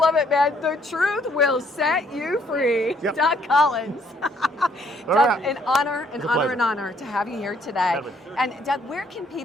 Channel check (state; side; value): normal; both; correlation 0.66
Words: it, man. The truth will set you free. Yep. Doug Collins. Doug, right. an honor to have you here today. Definitely. And Doug, where can